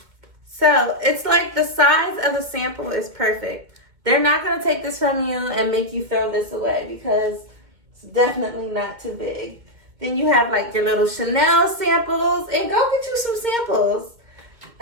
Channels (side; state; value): left; late; 2.2 ms